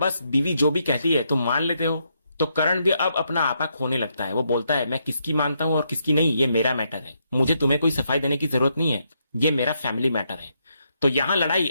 बीवी जो भी कहती है तुम मान लेते हो। तो करण भी अब अपना आपा खोने लगता है। वो बोलता है मैं किसकी मानता हूं और किसकी नहीं ये मेरा मैटर है, मुझे तुम्हें कोई सफाई देने की जरूरत नहीं है, ये मेरा फैमिली मैटर है। तो यहाँ लड़ाई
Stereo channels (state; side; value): inverted; both; correlation -0.79